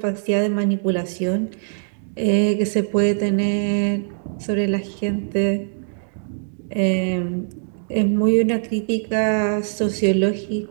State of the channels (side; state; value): left; silent; digital silence